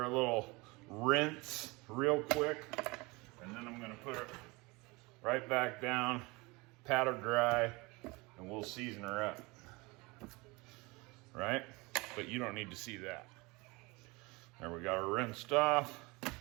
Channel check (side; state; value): left; quieter; 24.9 dB